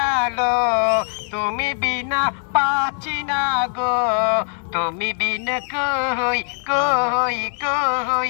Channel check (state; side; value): silent; right; 60 dB below the other